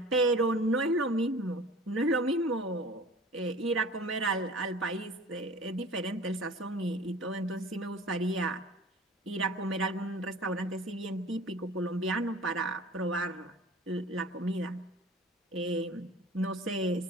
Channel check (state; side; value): normal; both; correlation 0.42